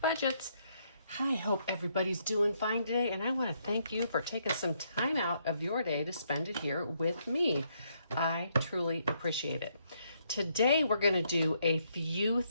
Budgets. I hope everybody's doing fine today, and I want to thank you for taking some time out of your day to spend it here with me. I truly appreciate it. Today we're going to do a few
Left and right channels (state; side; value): inverted; both; correlation -0.73